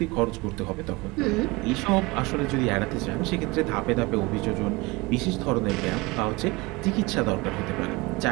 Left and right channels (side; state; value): left; quieter; 23.7 dB